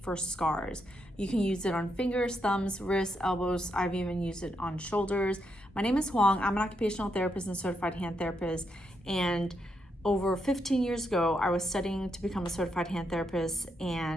for scars. You can use it on fingers, thumbs, wrists, elbows. I've even used it on shoulders. My name is Huang. I'm an occupational therapist and certified hand therapist. And over 15 years ago, I was studying to become a certified hand therapist.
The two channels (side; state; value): both; normal; correlation 0.80